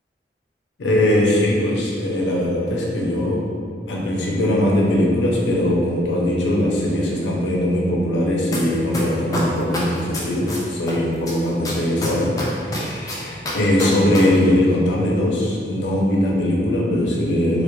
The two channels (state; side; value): normal; both; correlation 0.66